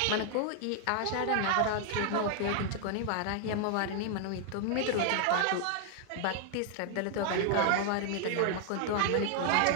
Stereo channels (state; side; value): different; both; correlation 0.00